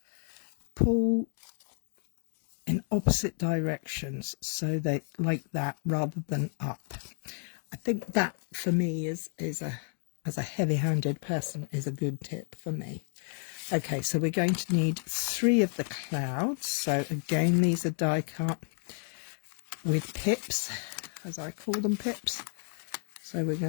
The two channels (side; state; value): right; silent; 57 dB below the other